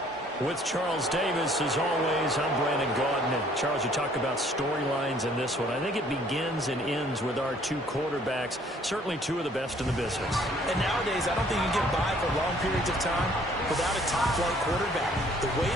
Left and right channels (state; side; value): normal; both; correlation 0.59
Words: With Charles Davis, as always, I'm Brandon Gaudin. And Charles, you talk about storylines in this one. I think it begins and ends with our two quarterbacks, certainly two of the best in the business. And nowadays, I don't think you can get by for long periods of time without a top-flight quarterback. The way